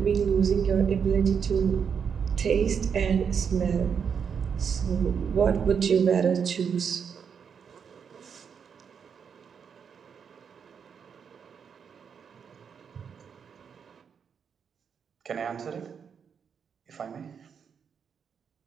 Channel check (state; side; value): quieter; left; 6.9 dB